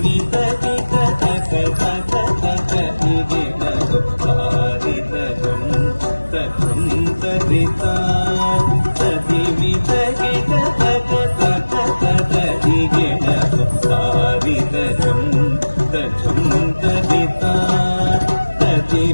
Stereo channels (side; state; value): both; inverted; correlation -1.00